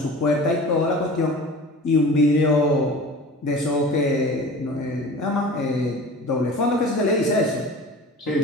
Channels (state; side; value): normal; both; correlation 0.38